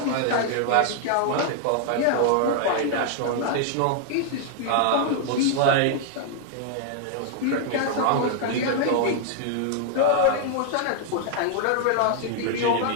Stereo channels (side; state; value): both; different; correlation -0.01